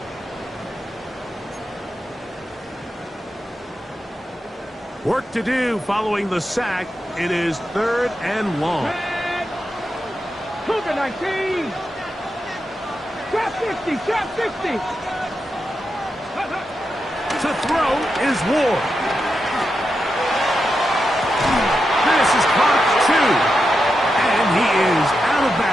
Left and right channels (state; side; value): normal; both; correlation 0.87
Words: Work to do following the sack. It is 3rd and long. Cougar 19. Trap 50. Trap 50. To throw is Ward. This is caught 2. And he is out of